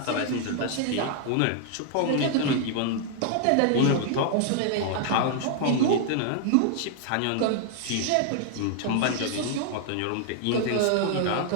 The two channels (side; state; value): both; different; correlation 0.00